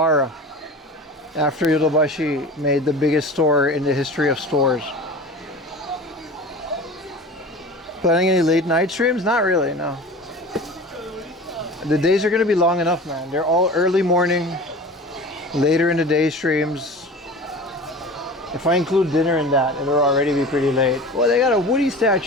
after Yodobashi made the biggest store in the history of stores. Planning any late night streams? Not really, no. The days are going to be long enough, man. They're all early morning, later in the day streams. If I include dinner in that, it'll already be pretty late. Well, they got a Woody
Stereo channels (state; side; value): normal; both; correlation 0.36